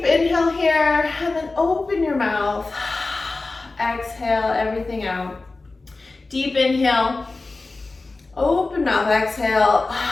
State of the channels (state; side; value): quieter; right; 3.4 dB